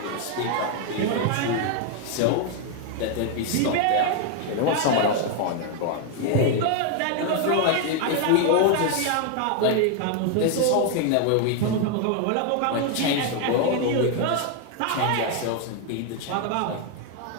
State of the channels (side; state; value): both; different; correlation 0.01